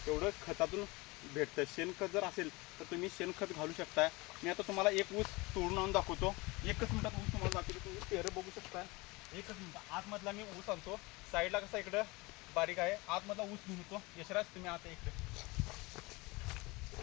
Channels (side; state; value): right; quieter; 24.1 dB